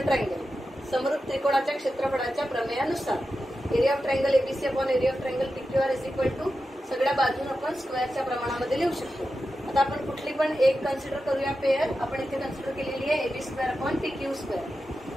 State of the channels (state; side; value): normal; both; correlation 0.91